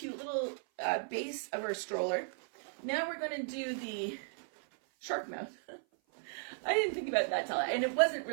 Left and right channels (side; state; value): left; silent; 54 dB below the other